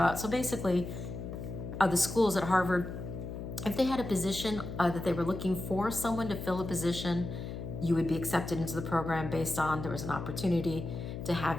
so basically, the schools at Harvard, if they had a position that they were looking for someone to fill a position, you would be accepted into the program based on there was an opportunity to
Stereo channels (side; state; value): left; noise; hum, 7 dB below the sound